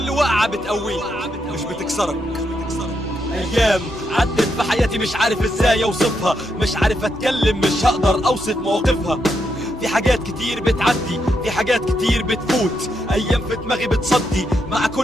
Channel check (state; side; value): normal; both; correlation 0.81